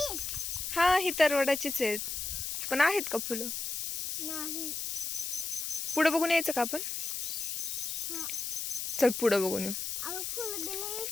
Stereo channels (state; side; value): noise; left; hiss, 3 dB below the sound